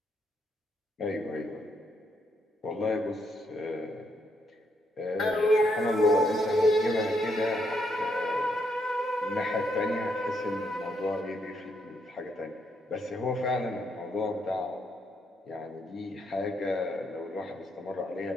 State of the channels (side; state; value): both; normal; correlation 0.76